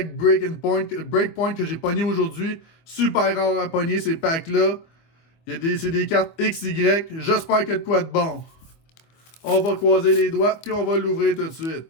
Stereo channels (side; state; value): right; late; 24 ms